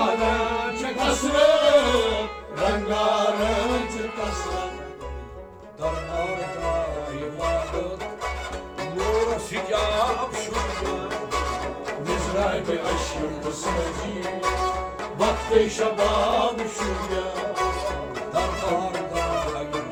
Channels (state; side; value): identical; both; correlation 1.00